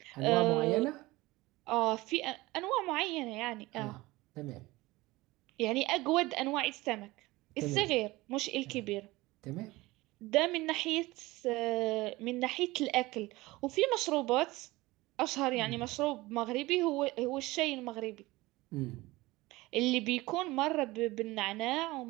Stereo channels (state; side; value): quieter; left; 20.2 dB